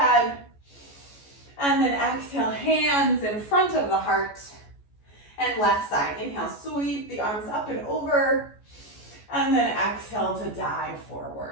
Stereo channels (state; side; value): late; right; 14 ms